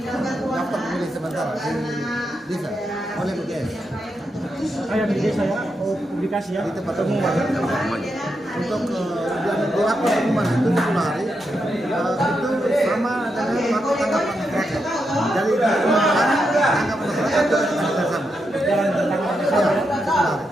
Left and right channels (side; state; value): both; normal; correlation 0.84